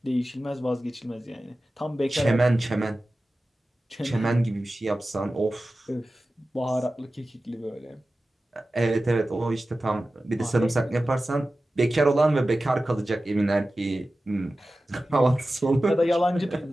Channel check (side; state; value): both; normal; correlation 0.95